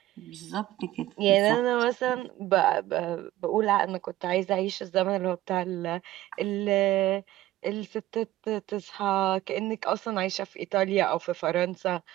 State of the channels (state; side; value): quieter; left; 15.2 dB